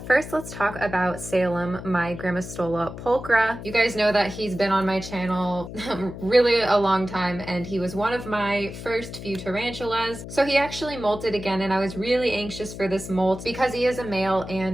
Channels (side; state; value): left; noise; hum, 11 dB below the sound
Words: first let's talk about Salem, my Grammostola pulchra. You guys know that he's been on my channel really a long time, and he was one of my first few tarantulas. So he actually molted again, and I was really anxious for this molt because he is a male